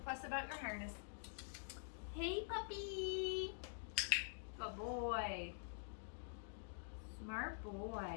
fuss about your harness. Hey, puppy. Good boy. Smart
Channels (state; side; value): silent; right; digital silence